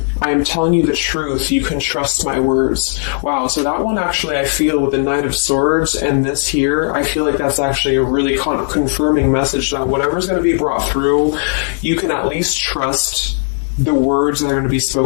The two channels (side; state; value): right; silent; 63 dB below the other